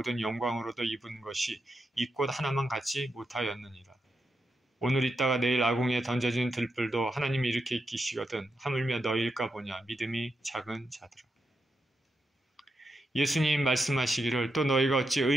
영광으로도 입은 것이 이 꽃 하나만 갖지 못하였느니라. 오늘 있다가 내일 아궁이에 던져진 들불도 하나님이 이렇게 익히시거든 하물며 너희일까 보냐. 믿음이 작은 자들아. 예수님 말씀하시기를 또 너희가 어찌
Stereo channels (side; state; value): both; normal; correlation 0.85